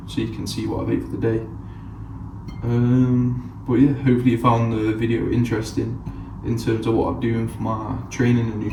so you can see what I've ate for the day. But yeah, hopefully you found the video interesting in terms of what I'm doing for my training and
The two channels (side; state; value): both; identical; correlation 1.00